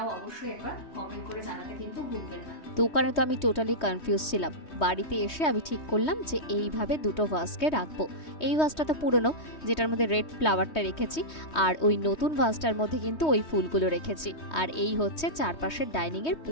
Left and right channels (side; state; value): right; late; 3.2 ms